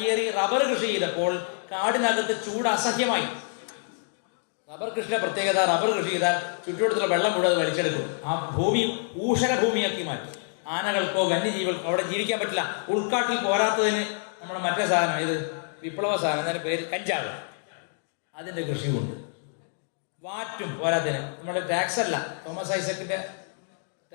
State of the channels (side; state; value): right; silent; 60 dB below the other